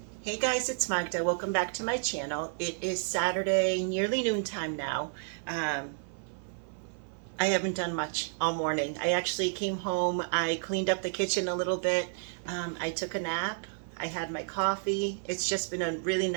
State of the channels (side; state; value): left; silent; 57 dB below the other